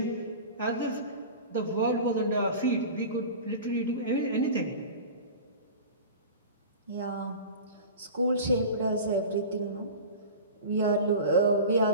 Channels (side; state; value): both; inverted; correlation -0.34